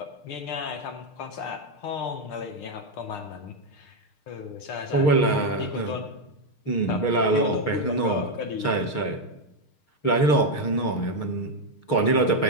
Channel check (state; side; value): late; right; 6.6 ms